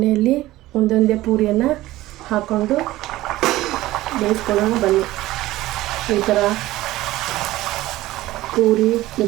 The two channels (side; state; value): left; quieter; 16.8 dB